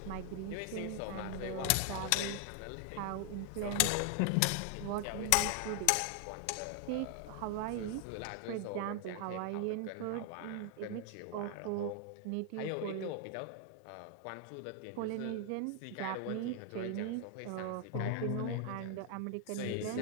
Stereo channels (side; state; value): both; different; correlation 0.00